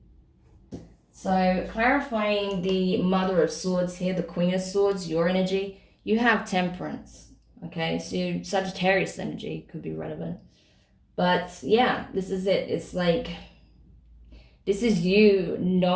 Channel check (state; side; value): identical; both; correlation 1.00